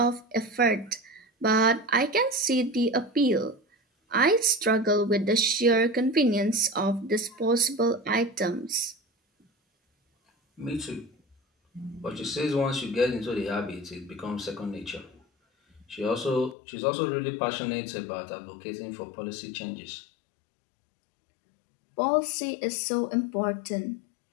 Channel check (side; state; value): right; drops out; at 16.6 s